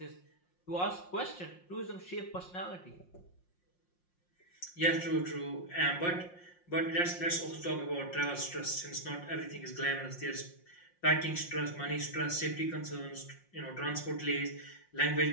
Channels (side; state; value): right; late; 5.6 ms